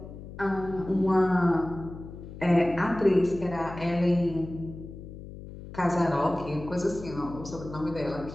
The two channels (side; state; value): left; noise; hum, 13 dB below the sound